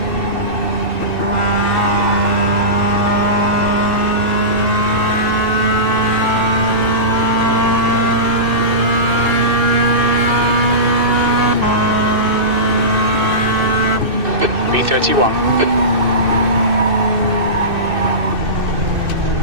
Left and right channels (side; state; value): left; late; 2.6 ms